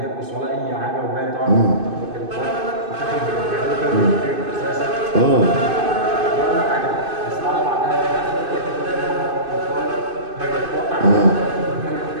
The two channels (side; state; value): left; late; 2.5 ms